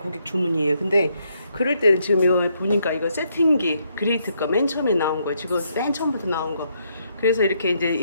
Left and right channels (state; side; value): inverted; both; correlation -0.75